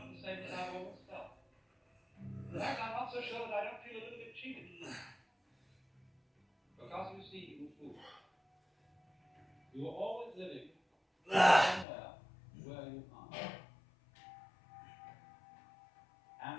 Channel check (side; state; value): right; drops out; at 11.9 s